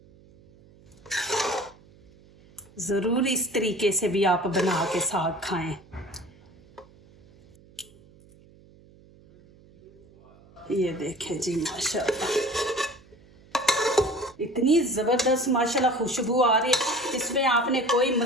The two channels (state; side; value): noise; right; hum, 26 dB below the sound